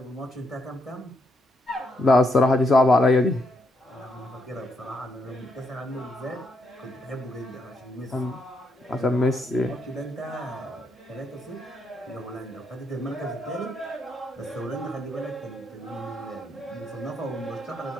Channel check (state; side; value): normal; both; correlation 0.78